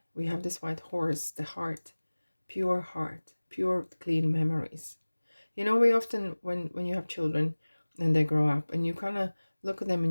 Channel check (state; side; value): inverted; both; correlation -1.00